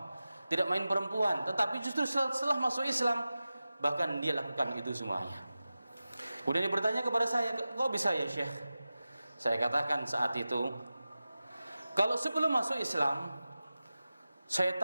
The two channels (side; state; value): both; inverted; correlation -0.95